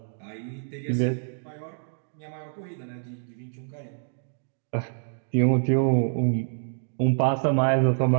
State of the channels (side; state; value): left; silent; digital silence